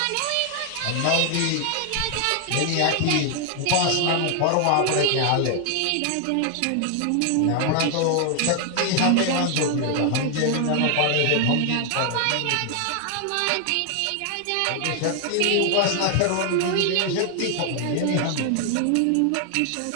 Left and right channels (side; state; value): both; different; correlation 0.00